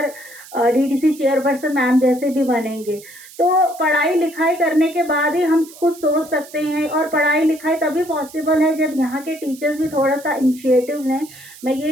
डीडीसी चेयरपर्सन मैम जैसे भी बनेंगे। तो पढ़ाई लिखाई करने के बाद ही हम कुछ सोच सकते हैं, और पढ़ाई लिखाई तभी पॉसिबल है जब यहाँ के टीचर्स भी थोड़ा सा इनिशिएटिव लें। मैं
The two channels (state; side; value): noise; right; hiss, 19 dB below the sound